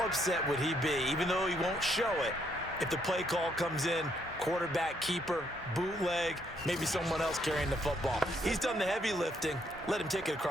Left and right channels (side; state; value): both; normal; correlation 0.72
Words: upset would he be, even though he won't show it, if the play call comes in, quarterback, keeper, bootleg, maybe someone else carrying the football. He's done the heavy lifting. Let him take it